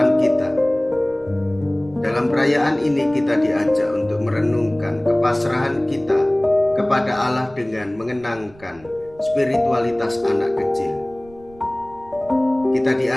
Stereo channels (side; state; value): right; noise; rumble, 24 dB below the sound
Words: kita. Dalam perayaan ini kita diajak untuk merenungkan kepasrahan kita kepada Allah dengan mengenangkan spiritualitas anak kecil. Kita